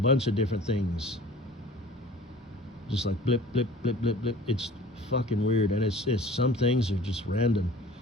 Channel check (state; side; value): normal; both; correlation 0.45